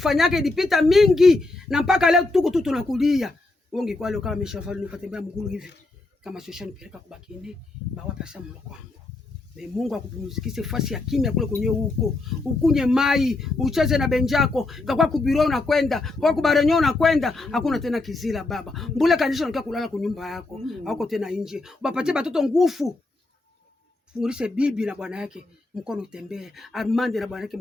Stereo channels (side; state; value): right; quieter; 3.1 dB